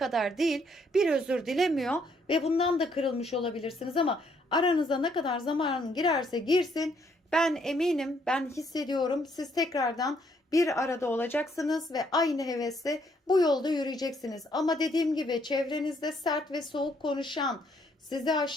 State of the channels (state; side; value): normal; both; correlation 0.70